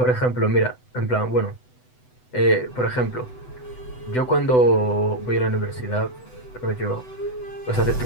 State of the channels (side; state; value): right; late; 8.0 ms